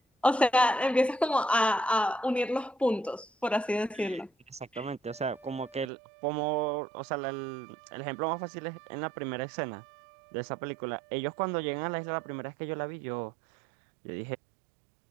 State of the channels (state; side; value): drops out; left; at 5.9 s